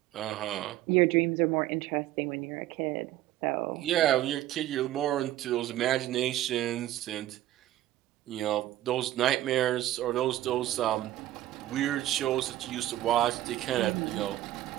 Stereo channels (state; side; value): quieter; left; 14.2 dB